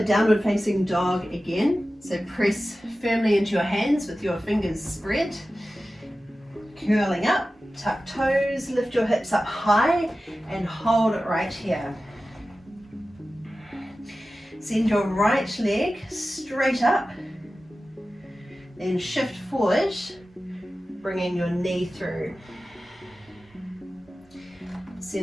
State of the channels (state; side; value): normal; both; correlation 0.95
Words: downward facing dog again. So press firmly into your hands with your fingers spread. Curling up, tuck toes, lift your hips up high and hold it right here. Send your right leg straight up. Then shift forward, bringing your knee through.